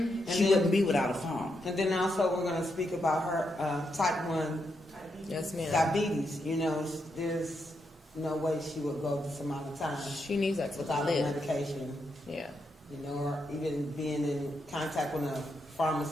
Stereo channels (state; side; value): normal; both; correlation 0.82